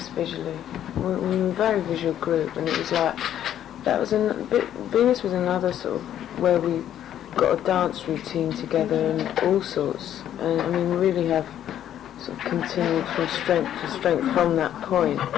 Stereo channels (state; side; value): quieter; right; 10.9 dB